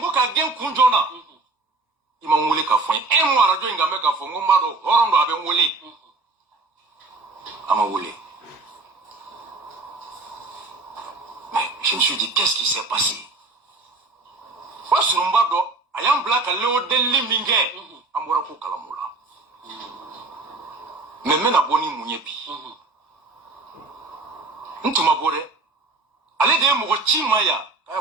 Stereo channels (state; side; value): quieter; left; 3.4 dB